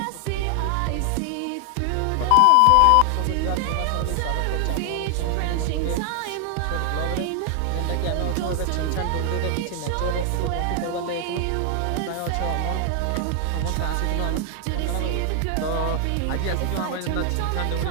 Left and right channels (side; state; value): both; different; correlation 0.00